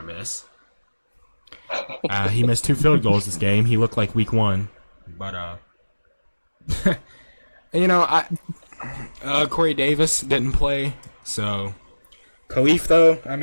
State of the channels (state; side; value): inverted; both; correlation -1.00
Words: miss. He missed 2 field goals this game. He looked like week 1. But Corey Davis didn't play, so Khalif though. I